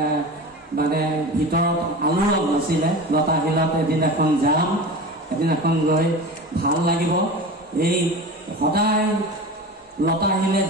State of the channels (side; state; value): both; normal; correlation 0.31